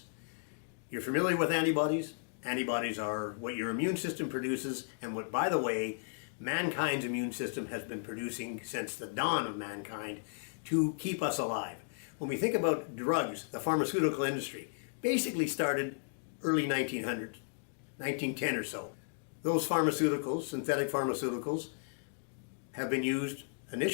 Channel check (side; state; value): right; silent; digital silence